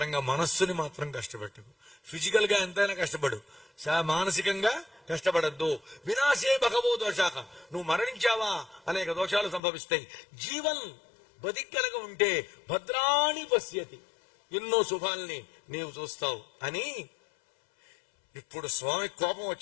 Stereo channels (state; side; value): drops out; right; at 9.6 s